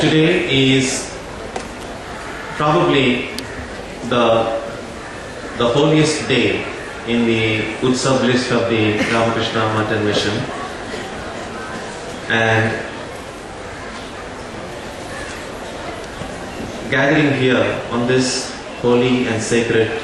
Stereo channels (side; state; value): both; identical; correlation 1.00